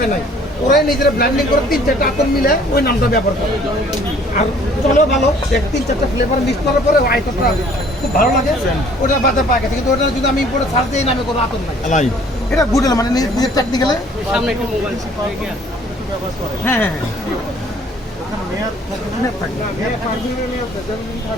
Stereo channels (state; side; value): normal; both; correlation 0.56